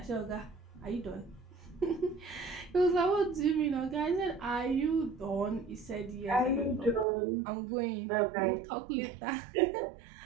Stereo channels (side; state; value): left; drops out; at 7.1 s